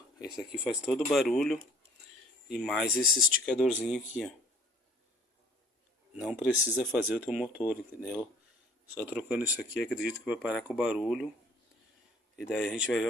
esse aqui faz todo o barulho, e mais esse esticadorzinho aqui, ó. Não precisa fazer o teu motor, entendeu? Só trocando isso aqui, acredito que vai parar com o barulho. E daí a gente vai ver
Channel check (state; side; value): normal; both; correlation 0.53